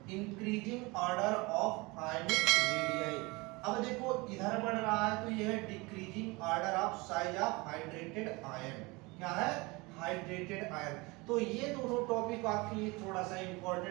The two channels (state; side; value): quieter; left; 24.8 dB